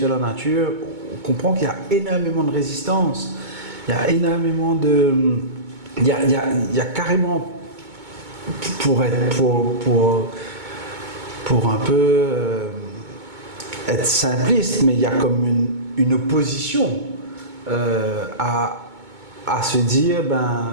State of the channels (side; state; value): left; late; 2.2 ms